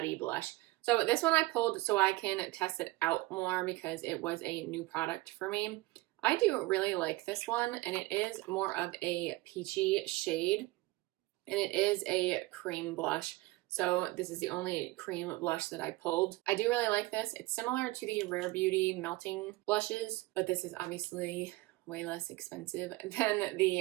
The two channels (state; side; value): quieter; left; 20.0 dB